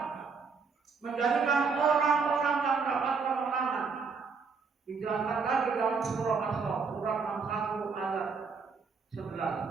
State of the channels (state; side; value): quieter; left; 5.1 dB